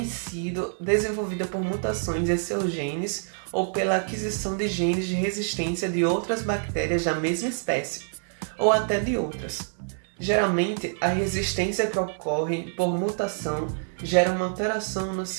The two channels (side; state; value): left; silent; digital silence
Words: sido desenvolvida por mutações em seus genes ou pela aquisição de genes de resistência de outras bactérias da mesma espécie, ou até de outras. Geralmente, a resistência que ocorre por mutação gera uma alteração no